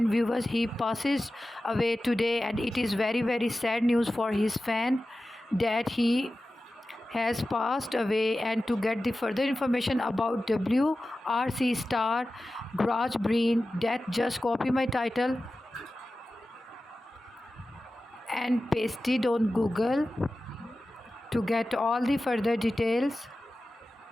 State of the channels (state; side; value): normal; both; correlation 0.94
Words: viewers, he passes away today, and it is very sad news for his fan that he has passed away. And to get the further information about WRC star Craig Breen death, just copy my title and paste it on Google to get all the further details